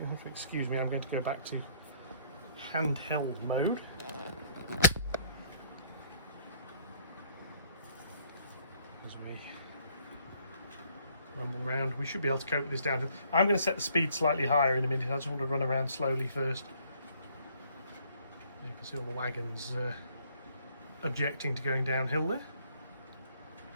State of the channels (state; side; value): inverted; both; correlation -0.62